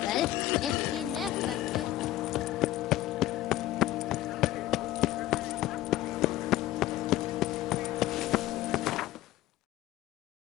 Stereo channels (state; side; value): quieter; right; 15.2 dB